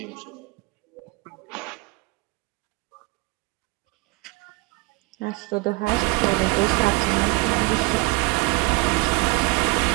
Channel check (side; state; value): left; quieter; 26.7 dB